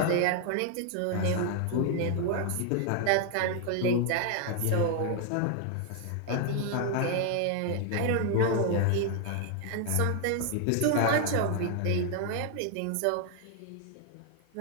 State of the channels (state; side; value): different; both; correlation 0.00